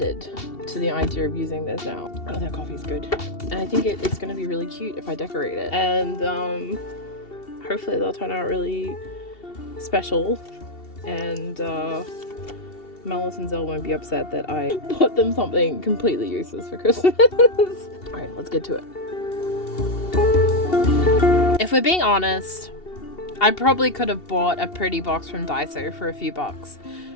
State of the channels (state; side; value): late; right; 2.7 ms